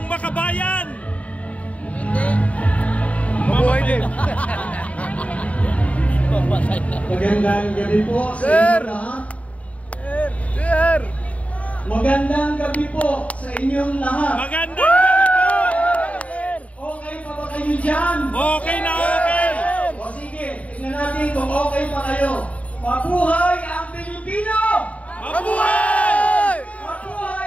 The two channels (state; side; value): late; right; 0.067 ms